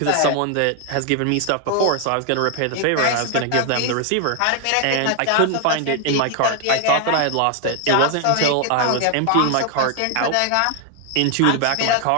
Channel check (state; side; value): different; both; correlation 0.00